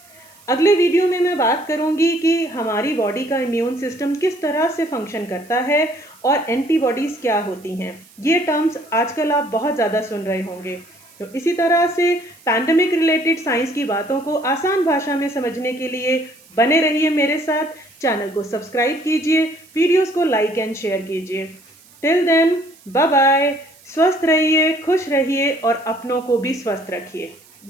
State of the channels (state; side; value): noise; right; hiss, 26 dB below the sound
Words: अगले वीडियो में मैं बात करूंगी कि हमारी बॉडी का इम्यून सिस्टम किस तरह से फंक्शन करता है और एंटीबॉडीज क्या होती हैं। ये टर्म्स आजकल आप बहुत ज़्यादा सुन रहे होंगे। तो इसी तरह से पैंडेमिक रिलेटेड साइंस की बातों को आसान भाषा में समझने के लिए बने रहिए मेरे साथ। चैनल को सब्सक्राइब कीजिए, वीडियोस को लाइक एंड शेयर कीजिए। Till then, bye bye. स्वस्थ रहिए, खुश रहिए और अपनों को भी स्वस्थ रखिए।